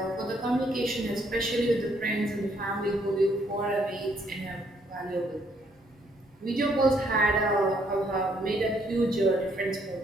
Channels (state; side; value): normal; both; correlation 0.70